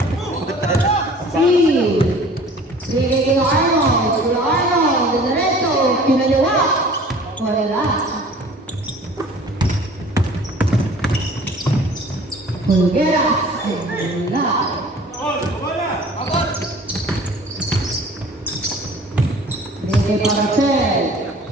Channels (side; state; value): both; normal; correlation 0.48